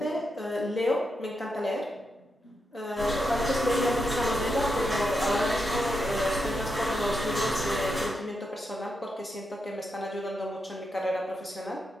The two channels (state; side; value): normal; both; correlation 0.85